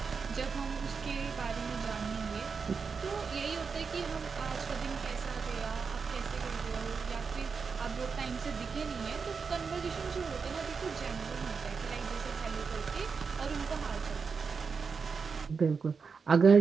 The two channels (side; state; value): left; quieter; 5.4 dB